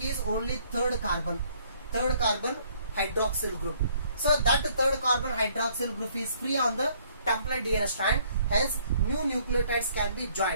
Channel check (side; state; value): both; inverted; correlation -0.63